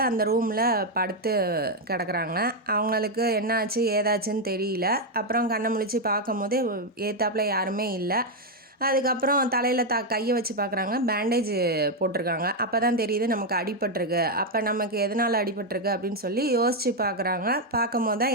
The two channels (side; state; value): both; normal; correlation 0.02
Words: அந்த ரூமில் படுத்து கிடக்குறாங்க. அவங்களுக்கு என்ன ஆச்சு ஏதாச்சுன்னு தெரியல. அப்புறம் கண்ணை முழிச்சு பார்க்கும் போது ஏத்தாப்பில் யாருமே இல்லை. அதுக்கப்புறம் தலையில் கையை வச்சு பார்க்குறாங்க, பேண்டேஜ் போட்டிருக்காங்க. அப்போ தான் தெரியுது நமக்கு அடிபட்டிருக்கு. அப்போ நமக்கு எதனால் அடிபட்டிருக்கு அப்படின்னு சொல்லி யோசித்து பார்க்குறாங்க. பார்க்கும் போது தான்